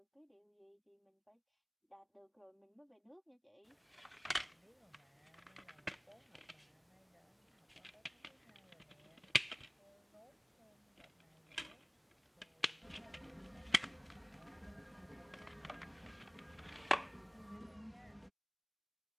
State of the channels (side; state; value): both; identical; correlation 1.00